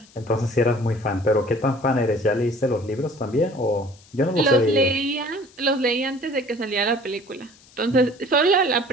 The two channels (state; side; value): noise; left; hiss, 27 dB below the sound